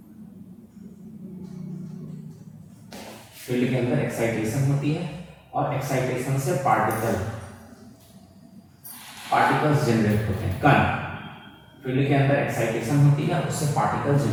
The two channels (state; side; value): identical; both; correlation 1.00